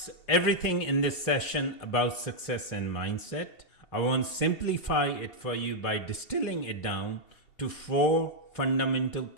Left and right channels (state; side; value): late; right; 3.0 ms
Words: everything in this session about success and mindset. I want to simplify it for you by distilling it down to 4 fundamental